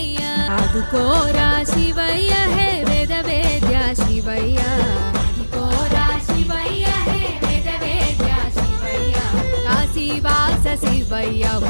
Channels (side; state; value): both; inverted; correlation -1.00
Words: ఆదుకోరా శివయ్య హే వేద వేద్య శివయ్య ఆదుకోరా శివయ్య హే వేద వేద్య శివయ్య కాశీవాస శివయ్య